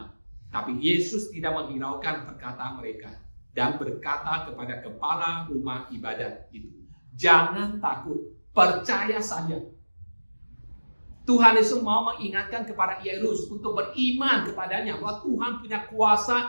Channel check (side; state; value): both; inverted; correlation -1.00